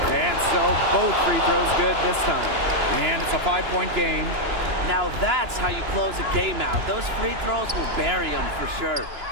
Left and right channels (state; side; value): late; left; 2.9 ms